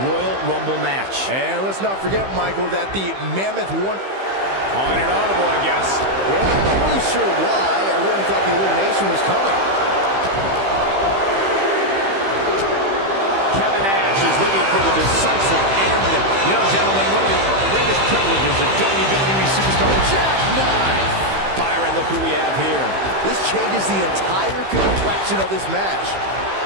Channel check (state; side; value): late; left; 15 ms